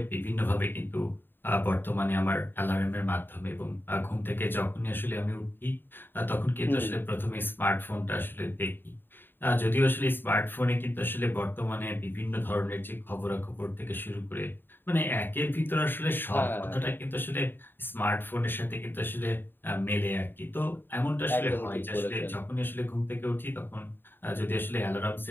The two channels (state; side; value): late; right; 0.096 ms